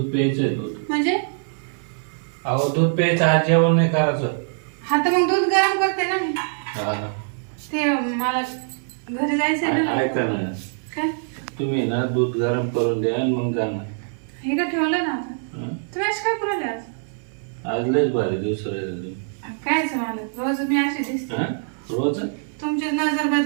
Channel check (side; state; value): left; silent; 63 dB below the other